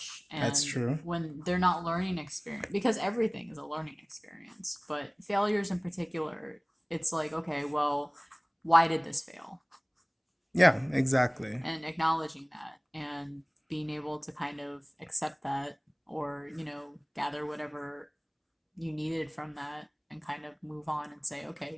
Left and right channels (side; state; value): both; identical; correlation 1.00